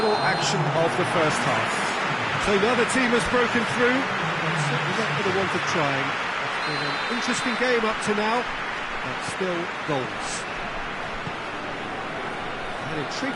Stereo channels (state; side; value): identical; both; correlation 1.00